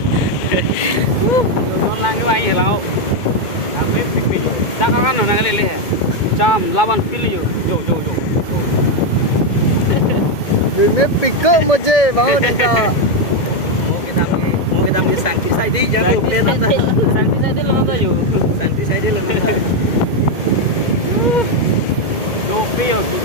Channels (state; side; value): late; right; 2.2 ms